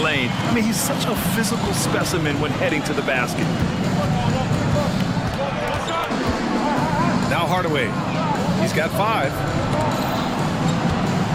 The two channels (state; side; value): identical; both; correlation 1.00